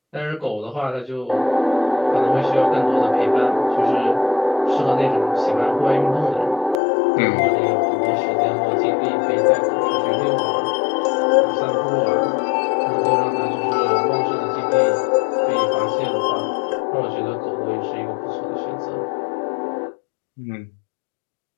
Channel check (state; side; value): drops out; right; at 6.8 s